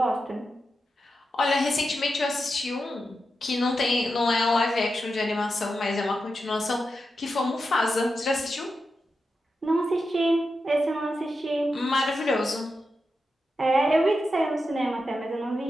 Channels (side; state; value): both; normal; correlation 0.88